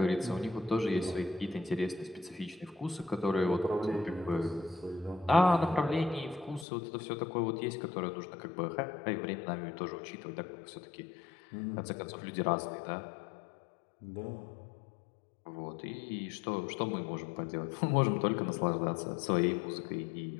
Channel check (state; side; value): drops out; right; at 6.7 s